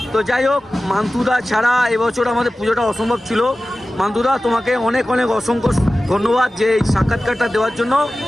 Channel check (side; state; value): both; normal; correlation 0.95